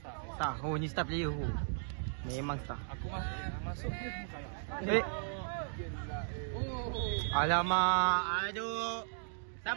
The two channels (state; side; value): silent; left; digital silence